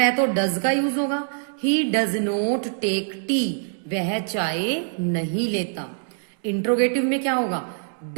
तो डज का यूज होगा। He does not take tea, वह चाय नहीं लेता। इंट्रोगेटिव में क्या होगा,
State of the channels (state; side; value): silent; left; digital silence